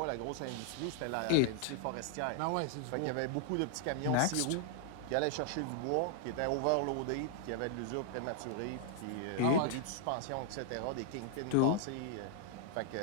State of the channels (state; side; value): different; both; correlation -0.01